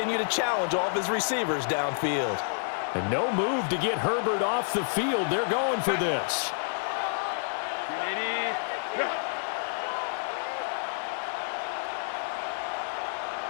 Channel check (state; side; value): silent; right; 59 dB below the other